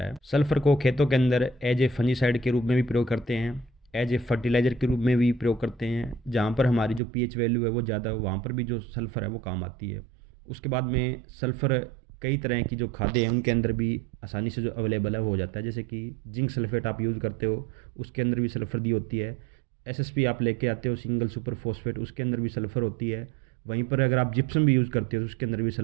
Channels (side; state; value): left; drops out; at 7.0 s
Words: है। सल्फ़र को खेतों के अंदर एज ए फंजीसाइड के रूप में भी प्रयोग करते हैं, एज ए फर्टिलाइज़र के रूप में भी प्रयोग करते हैं। जहाँ पर हमारी जो पीएच वैल्यू है वो ज़्यादा हो वहाँ पर भी जो सल्फ़र है वो काम आती है। उसके बाद में सल्फ़र कई तरह की जो खादें हैं उनके अंदर भी आसानी से जो अवेलेबल है वो हो जाता है। जैसे कि जिंक सल्फेट आप यूज़ करते हो उसके अंदर भी सल्फ़र दी होती है। एसएसपी आप लेके आते हो सिंगल सुपर फॉस्फेट, उसके अंदर भी सल्फ़र होती है। वहीं पर अगर आप जिप्सम भी यूज़ करते हो तो उसके अंदर भी